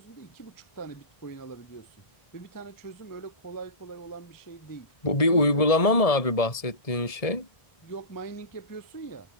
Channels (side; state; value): right; late; 1.7 ms